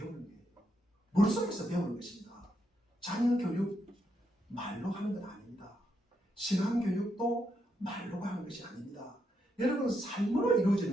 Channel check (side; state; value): both; normal; correlation 0.80